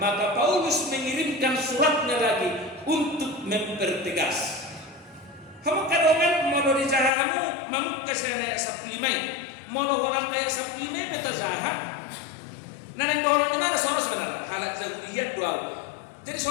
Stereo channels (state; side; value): drops out; right; at 7.1 s